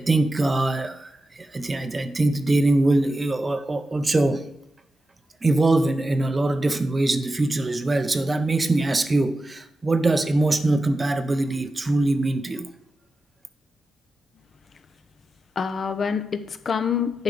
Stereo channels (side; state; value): both; normal; correlation 0.91